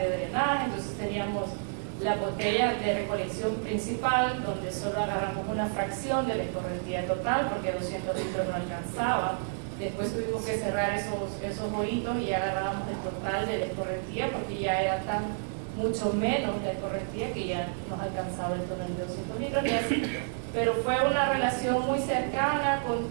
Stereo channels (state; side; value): silent; left; 58 dB below the other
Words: drenaje, entonces teníamos la botella de recolección principal, donde solo agarramos una fracción de la escorrentía total, porque 200 litros no alcanzaba. Después tuvimos que cerrar esos hoyitos y agarrábamos el total de la escorrentía, porque ya era mucho menos de escorrentía que ya nos alcanzaba el tonel de 200 litros. Pero fue una relación muy cercana, con